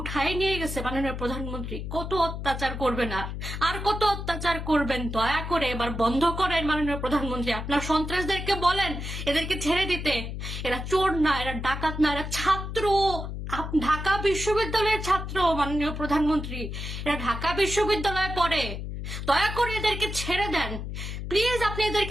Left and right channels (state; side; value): noise; left; hum, 6 dB below the sound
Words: নিয়ে গেছে মাননীয় প্রধানমন্ত্রী, কত অত্যাচার করবেন আর কত অত্যাচার করবেন, দয়া করে এবার বন্ধ করেন মাননীয় প্রধানমন্ত্রী। আপনার সন্ত্রাসদেরকে বলেন এদেরকে ছেড়ে দিতে। এরা চোর না, এরা ডাকাত না, এরা ছাত্র, ঢাকা বিশ্ববিদ্যালয়ের ছাত্র মাননীয় প্রধানমন্ত্রী, এরা ঢাকা বিশ্ববিদ্যালয়ে পড়ে। দয়া করে এদেরকে ছেড়ে দেন, প্লিজ আপনি